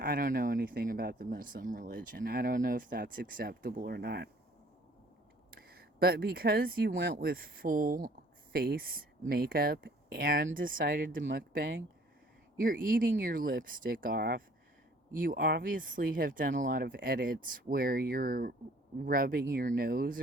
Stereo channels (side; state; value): both; normal; correlation 0.56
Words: anything about the Muslim religion. I don't know if that's acceptable or not. But because you went with full face makeup and decided to mukbang, you're eating your lipstick off. You obviously have done a lot of edits where you're rubbing your nose